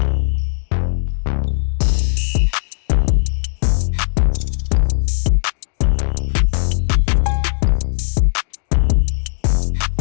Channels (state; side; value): silent; right; digital silence